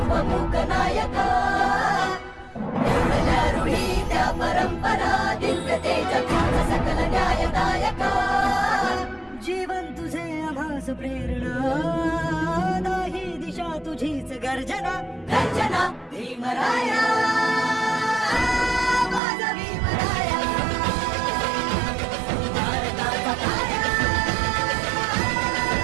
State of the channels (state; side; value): drops out; left; at 19.2 s